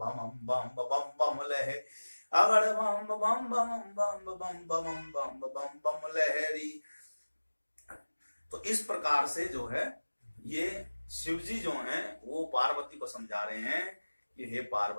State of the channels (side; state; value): both; inverted; correlation -1.00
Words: बम बम बम लहे, अगड़ बम बम बम बम बम बम बम बम बम लहरी। तो इस प्रकार से जो है ये शिव जी जो हैं वो पार्वती को समझा रहे हैं कि हे